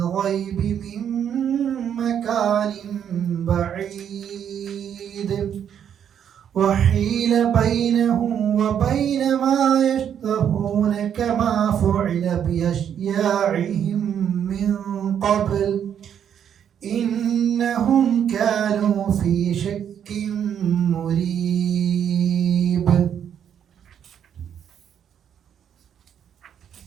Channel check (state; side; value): quieter; left; 8.9 dB